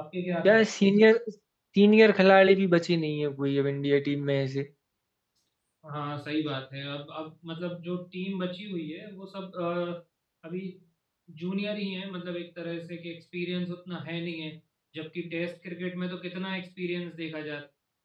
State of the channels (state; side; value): identical; both; correlation 1.00